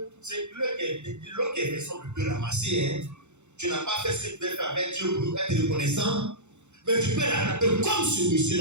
c'est l'autre qui est raison de te ramasser. Hein. Tu n'as pas fait ce que tu devais faire avec Dieu pour être reconnaissant. Mais tu peux rattraper comme ce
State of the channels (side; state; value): left; late; 0.83 ms